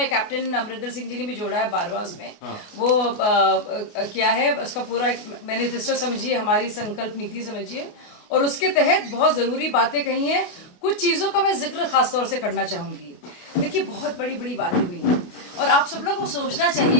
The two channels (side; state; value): right; late; 29 ms